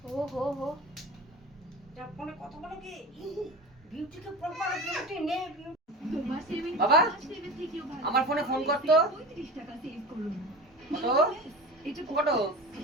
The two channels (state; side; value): normal; both; correlation 0.32